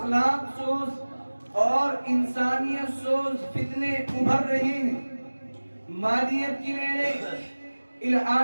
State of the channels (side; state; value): both; inverted; correlation -1.00